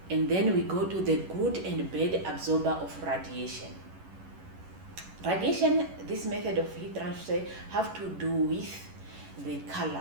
and then we go to the good and bad absorber of radiation. Radiation, this method of heat transfer, have to do with the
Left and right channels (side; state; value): left; late; 11 ms